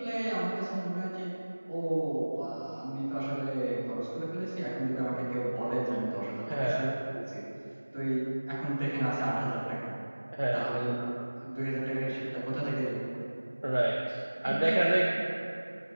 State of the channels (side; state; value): both; inverted; correlation -1.00